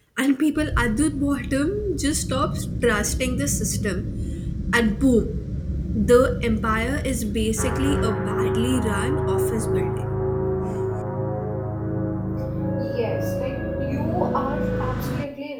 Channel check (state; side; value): identical; both; correlation 1.00